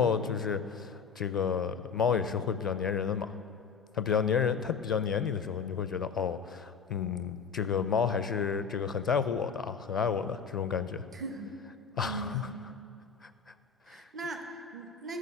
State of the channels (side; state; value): right; quieter; 6.0 dB